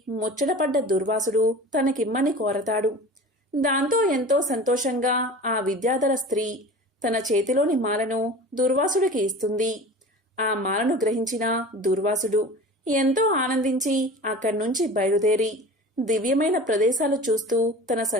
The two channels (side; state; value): both; normal; correlation 0.38